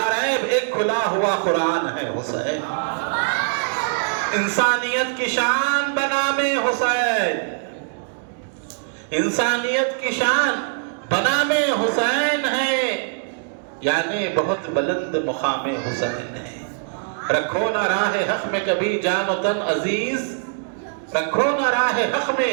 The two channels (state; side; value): silent; left; digital silence